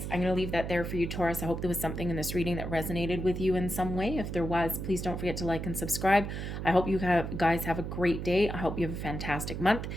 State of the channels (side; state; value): right; noise; hum, 5 dB below the sound